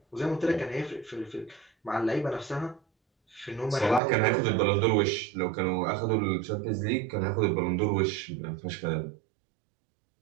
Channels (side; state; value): left; drops out; at 4.0 s